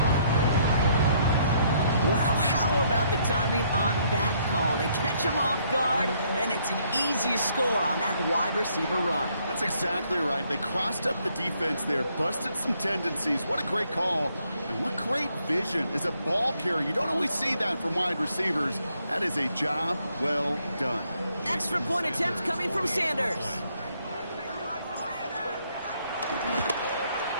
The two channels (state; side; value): inverted; both; correlation -0.69